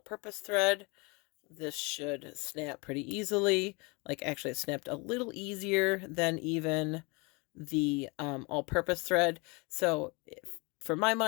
thread. This should snap pretty easily. Like, actually, it snapped a little easier than even the all-purpose thread. So for my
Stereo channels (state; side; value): quieter; right; 28.7 dB